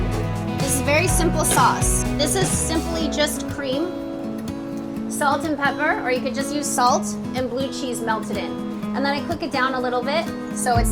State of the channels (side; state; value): both; identical; correlation 1.00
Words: this is very simple sauce. This is simply just cream, salt and pepper, or you could just use salt and blue cheese melted in. And then I cook it down a little bit so it's